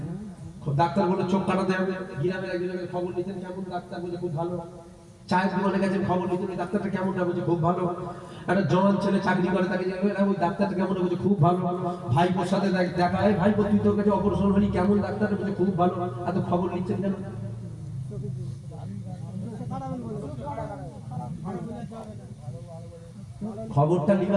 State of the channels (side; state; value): both; identical; correlation 1.00